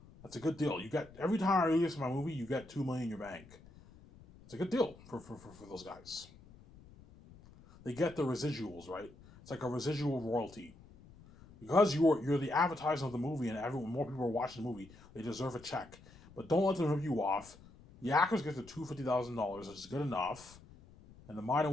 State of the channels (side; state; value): left; noise; rumble, 22 dB below the sound